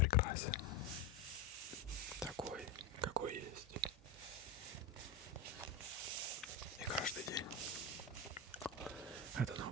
Такой, какой есть. И каждый день это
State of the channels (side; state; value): right; quieter; 3.3 dB